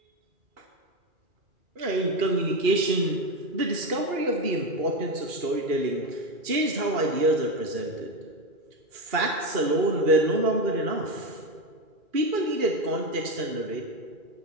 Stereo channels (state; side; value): late; left; 2.4 ms